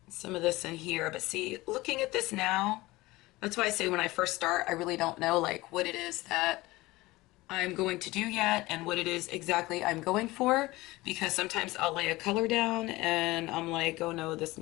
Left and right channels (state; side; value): quieter; right; 19.9 dB